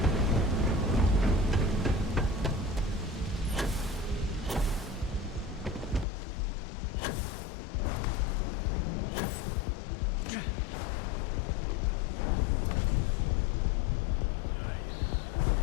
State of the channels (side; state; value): right; drops out; at 6.1 s